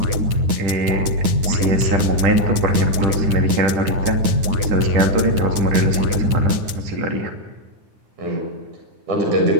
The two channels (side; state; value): left; late; 9.6 ms